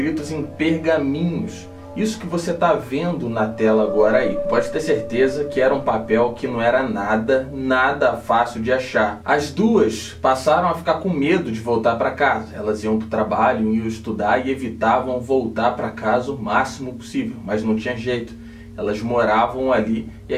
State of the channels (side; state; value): both; identical; correlation 1.00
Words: em pergaminhos. Isso que você está vendo na tela agora aí. Pode ter certeza que era um papel que não era nada fácil de achar. As duas passaram a ficar com medo de voltar para casa. Elas iam para o trabalho, iam estudar e evitavam voltar para casa o máximo possível. Mas não tinha jeito. Elas moravam ali e